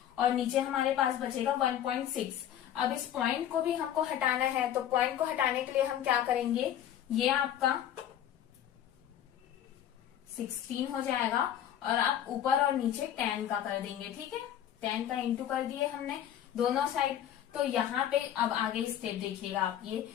और नीचे हमारे पास बचेगा 1.6। अब इस पॉइंट को भी हमको हटाना है, तो पॉइंट को हटाने के लिए हम क्या करेंगे, ये आपका 16 हो जाएगा और आप ऊपर और नीचे 10 का कर देंगे। ठीक है, 10 का इंटू कर दिए हमने दोनों साइड। तो यहाँ पे अब आगे स्टेप देखिएगा आप, ये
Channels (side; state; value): right; quieter; 10.7 dB